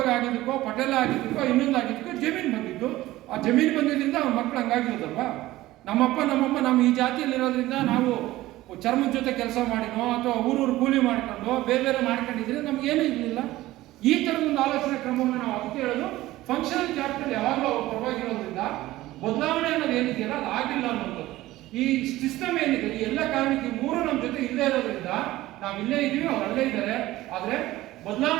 ಆಗಿದ್ದಕ್ಕೋ, ಪಟೇಲ ಆಗಿದ್ದಕ್ಕೋ, ಇನ್ನೊಂದು ಆಗಿದ್ದಕ್ಕೋ ಜಮೀನು ಬಂದಿದ್ದು. ಆ ಜಮೀನು ಬಂದಿದ್ದರಿಂದ ಅವ್ರ ಮಕ್ಳು ಹಂಗಾಗಿರೋದಲ್ವಾ. ನಮ್ಮಪ್ಪ ನಮ್ಮಮ್ಮ ನಮ್ಮ ಈ ಜಾತಿಯಲ್ಲಿರೋದ್ರಿಂದ ನಾವು ಚರ್ಮದ ಜೊತೆ ಕೆಲಸ ಮಾಡಿನೋ ಅಥವಾ ಊರೂರು ಕೂಲಿ ಮಾಡ್ಕೊಂಡು ಬೇರೆ ಮಾಡ್ಕೊಂಡಿದ್ರೆ ನಮ್ಗೇನೂ ಇರಲಿಲ್ಲ. ಈ ಥರದ ಒಂದು ಆಲೋಚನೆ ಕ್ರಮವನ್ನು ನಾವು ಅದಕ್ಕೆ ಹೇಳೋದು. ಫಂಕ್ಷನಲ್ ಕ್ಯಾಪಿಟಲ್ ಯಾವಾಗಲೂ ಅವ್ರು ಪರವಾಗಿರೋದ್ರಿಂದ ಬದಲಾವಣೆ ಅನ್ನೋದು ಏನಿದೆಯಲ್ಲ ಅದು ಆಗಿಲ್ಲ ಅನ್ನೋದು. ಈ ಸಿಸ್ಟಮ್ ಏನಿದೆ, ಈ ಎಲ್ಲ ಕಾರಣಕ್ಕೆ ಮೂರು ನಮ್ಮ ಜೊತೆ ಇಲ್ಲೇ ಇರೋದ್ರಿಂದ ನಾವು ಇಲ್ಲೇ ಇದೀವಿ, ಅವ್ರು ಅಲ್ಲೇ ಇದ್ದಾರೆ. ಆದ್ರೆ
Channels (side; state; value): left; quieter; 16.8 dB